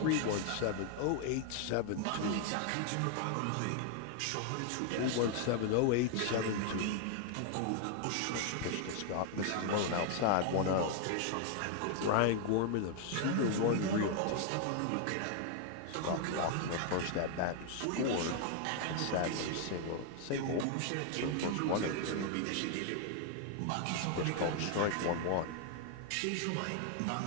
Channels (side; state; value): both; different; correlation 0.00